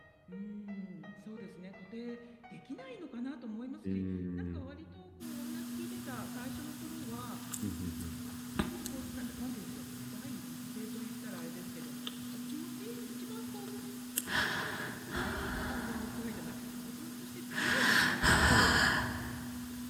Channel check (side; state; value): both; identical; correlation 1.00